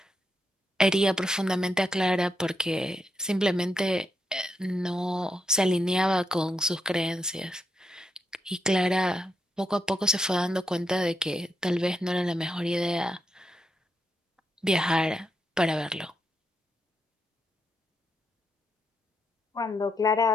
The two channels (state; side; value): normal; both; correlation 0.81